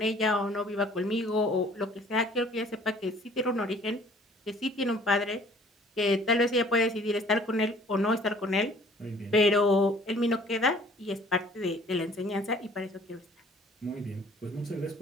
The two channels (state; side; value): normal; both; correlation 0.54